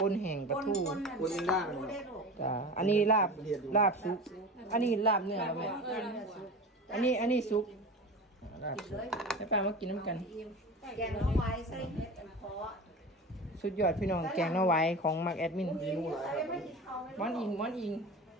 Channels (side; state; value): both; normal; correlation 0.32